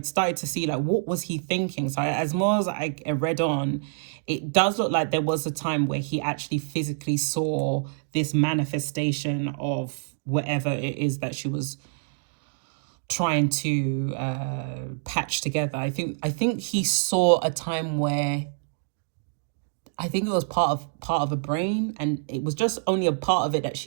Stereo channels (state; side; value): silent; left; digital silence